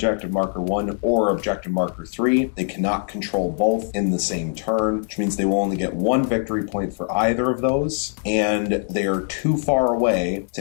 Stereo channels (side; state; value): right; silent; 58 dB below the other